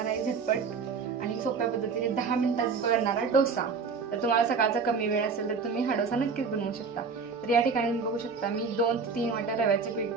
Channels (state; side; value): quieter; left; 5.1 dB